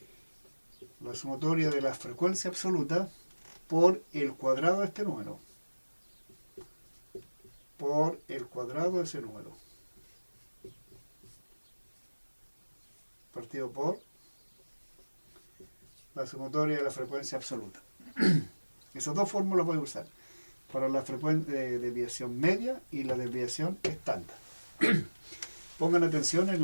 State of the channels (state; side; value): inverted; both; correlation -1.00